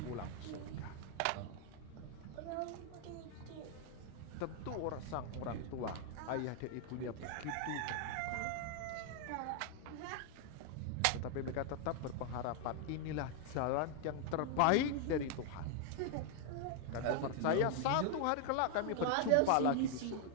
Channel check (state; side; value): different; both; correlation 0.00